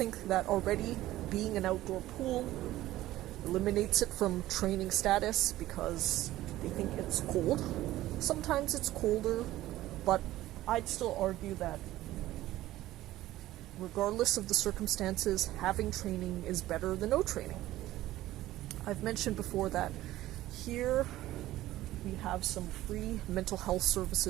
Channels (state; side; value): quieter; left; 15.4 dB